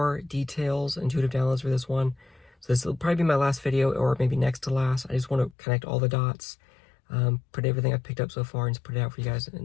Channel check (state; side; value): drops out; right; at 5.6 s